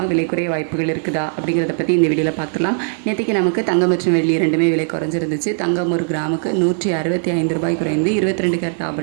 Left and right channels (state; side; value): silent; left; 67 dB below the other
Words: விலை குறைய வாய்ப்புகள் இருக்குதா அப்படிங்கிறத பற்றி இந்த வீடியோவில் பார்த்துலாம். நேற்றுக்கு நமக்கு தங்கம் மற்றும் வெள்ளி ரெண்டுமே விலை குறைஞ்சிருந்துச்சு. தங்கம் ஒரு கிராமுக்கு 165 ரூபாய் குறைந்து 22 கேரட்